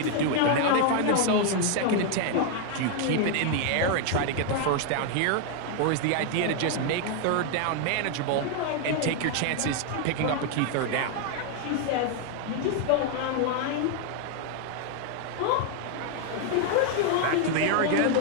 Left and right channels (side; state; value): both; different; correlation 0.00